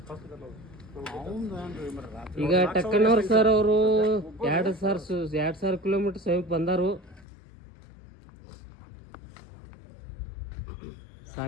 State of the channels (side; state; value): right; drops out; at 7.2 s